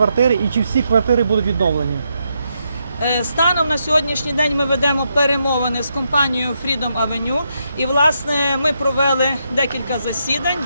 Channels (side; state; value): both; inverted; correlation -0.81